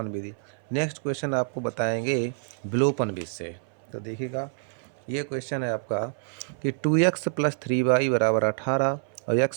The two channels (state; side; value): silent; left; 57 dB below the other